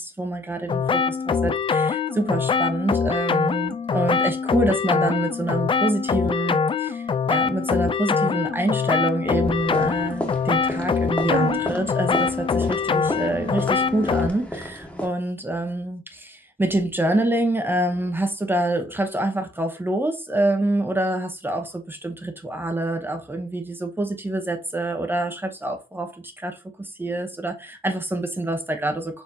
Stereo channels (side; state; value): both; normal; correlation 0.61